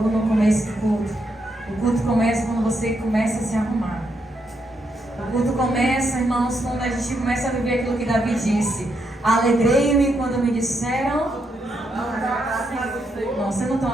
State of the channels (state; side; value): normal; both; correlation 0.79